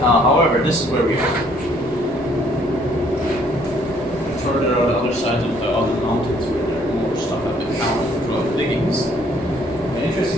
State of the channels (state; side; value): noise; right; rumble, 21 dB below the sound